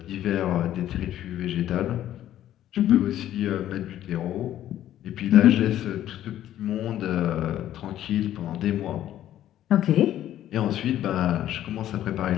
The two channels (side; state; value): right; quieter; 12.2 dB